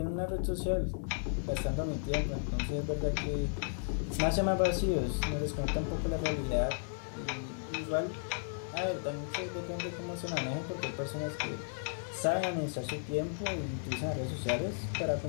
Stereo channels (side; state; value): right; silent; digital silence